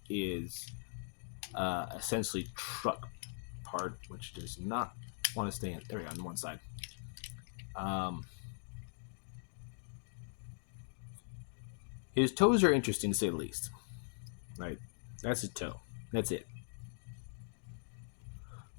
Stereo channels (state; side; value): silent; right; digital silence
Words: is essentially truck part, which does not want to stay in. There we go, on one side. His toes are interesting to say the least, right? That's his toe. That's it.